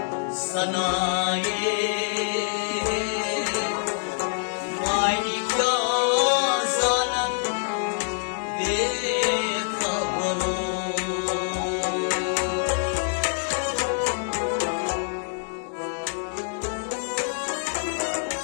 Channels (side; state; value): right; silent; digital silence